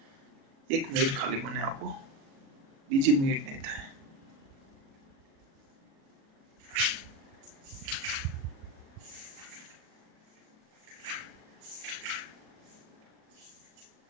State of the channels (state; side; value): late; left; 36 ms